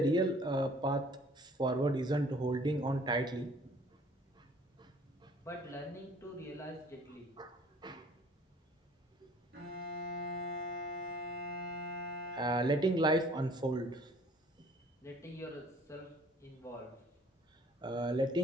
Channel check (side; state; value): both; normal; correlation 0.54